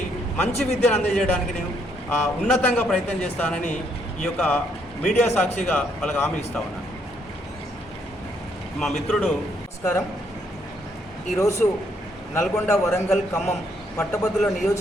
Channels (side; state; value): both; normal; correlation 0.71